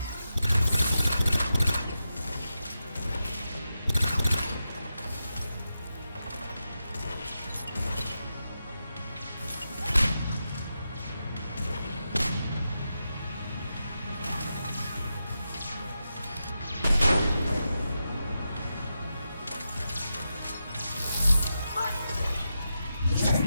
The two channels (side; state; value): both; inverted; correlation -0.89